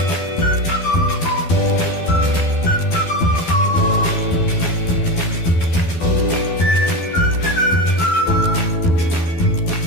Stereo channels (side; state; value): right; late; 12 ms